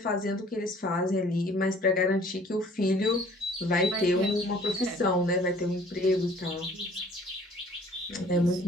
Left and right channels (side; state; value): both; normal; correlation 0.54